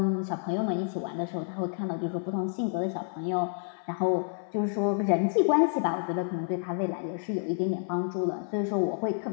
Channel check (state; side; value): silent; right; 58 dB below the other